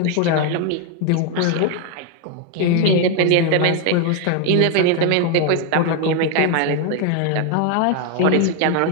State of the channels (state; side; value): different; both; correlation 0.01